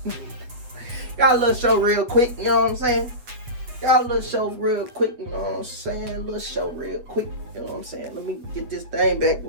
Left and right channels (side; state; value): left; late; 8.0 ms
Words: Got a little show real quick. You know what I'm saying? Got a little show real quick. You know what I'm saying? A little show real quick. You know what I'm saying? Let me get this thing back